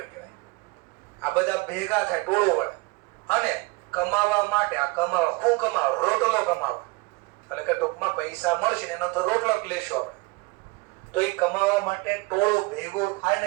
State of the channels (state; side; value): quieter; left; 25.7 dB